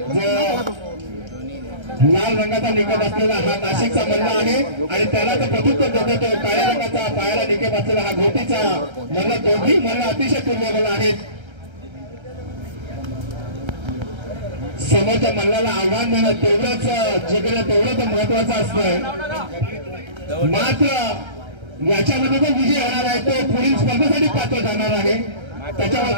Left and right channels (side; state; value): left; late; 1.3 ms